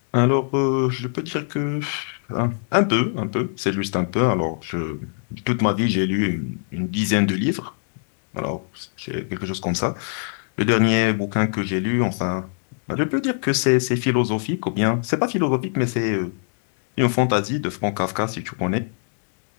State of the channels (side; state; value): right; silent; digital silence